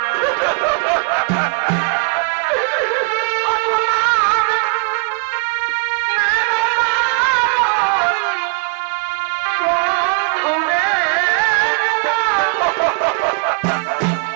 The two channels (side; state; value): left; quieter; 37.1 dB